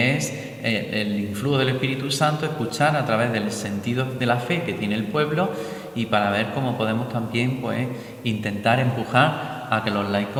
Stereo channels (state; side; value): identical; both; correlation 1.00